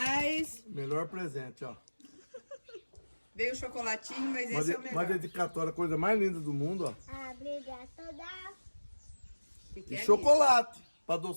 Melhor presente, ó. Veio o chocolatinho, mas esse é o melhor. Uma dedicatória, a coisa mais linda do mundo, ó. Obrigada toda. Que E é chocolate, pra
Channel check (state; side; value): inverted; both; correlation -1.00